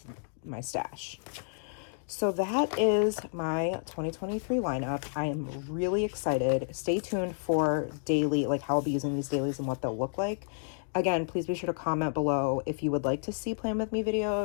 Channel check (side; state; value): right; silent; digital silence